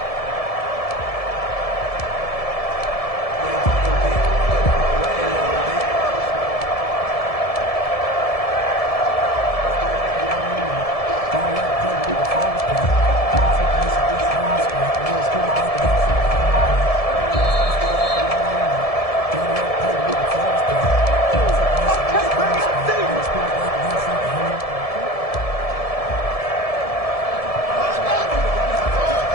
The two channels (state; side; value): late; right; 1.7 ms